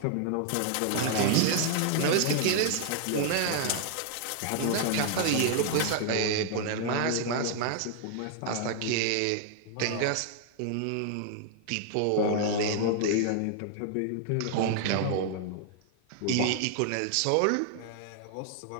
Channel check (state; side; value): different; both; correlation 0.00